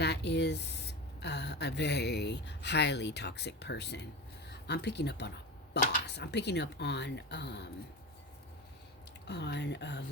is a very highly toxic person. I'm picking up on a boss. I'm picking up on a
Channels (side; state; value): both; normal; correlation 0.26